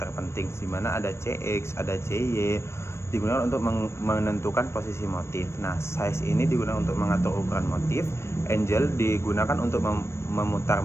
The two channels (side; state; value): right; late; 0.13 ms